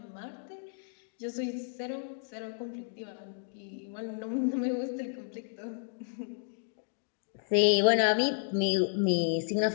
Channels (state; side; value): silent; right; digital silence